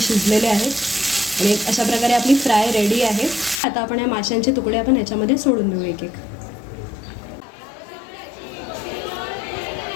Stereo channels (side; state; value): right; drops out; at 3.6 s